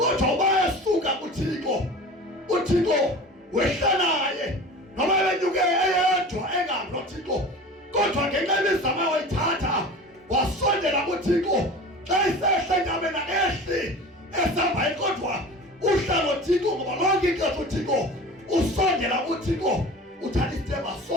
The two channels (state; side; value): normal; both; correlation 0.37